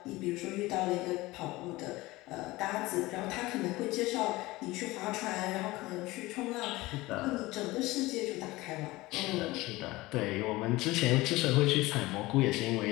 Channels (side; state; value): right; quieter; 20.0 dB